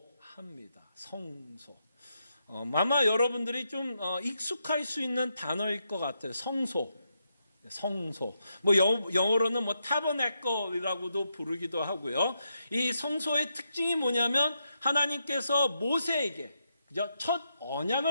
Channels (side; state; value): both; inverted; correlation -0.82